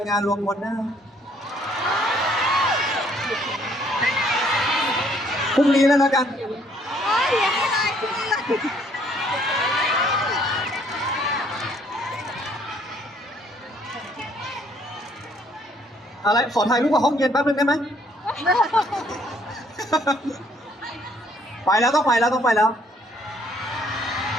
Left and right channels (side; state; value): both; normal; correlation 0.64